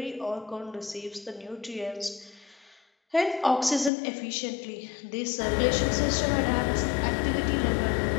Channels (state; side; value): drops out; right; at 3.9 s